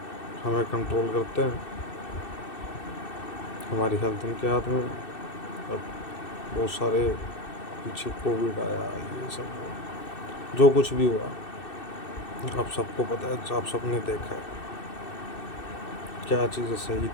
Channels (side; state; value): right; late; 2.6 ms